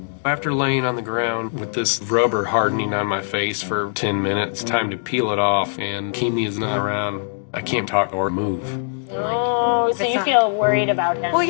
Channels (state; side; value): silent; right; digital silence